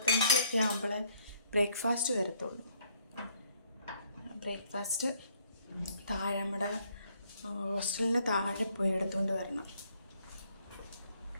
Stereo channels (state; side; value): inverted; both; correlation -0.66